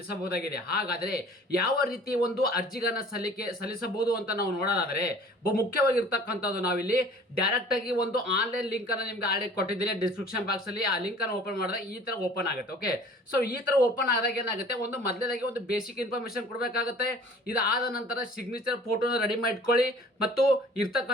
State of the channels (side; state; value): both; normal; correlation 0.50